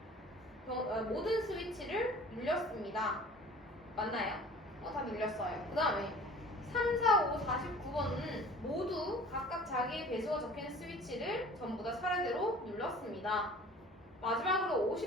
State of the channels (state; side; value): normal; both; correlation 0.46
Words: 스위치를 눌렸습니다. 맞나요? 다 눌렸어요. 그 다음에 3, 4, 5, 49번은 모두 각각 자기의 배수가 적힌 스위치를 전부 다 차례대로 눌렀습니다. 마지막으로